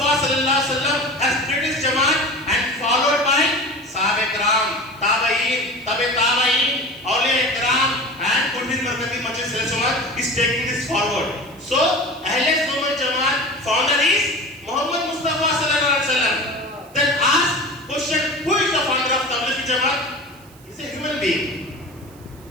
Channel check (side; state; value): right; noise; hiss, 26 dB below the sound